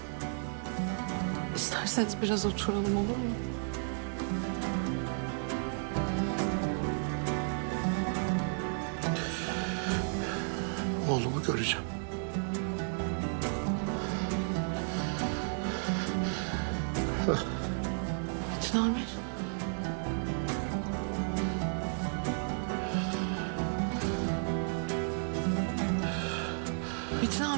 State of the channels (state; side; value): silent; left; 56 dB below the other